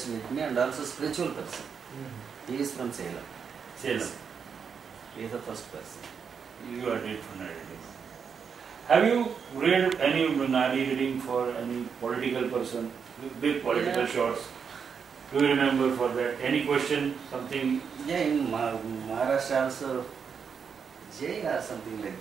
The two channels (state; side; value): quieter; left; 6.5 dB